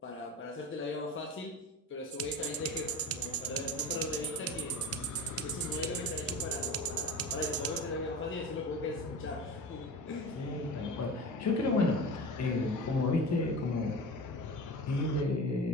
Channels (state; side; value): normal; both; correlation 0.31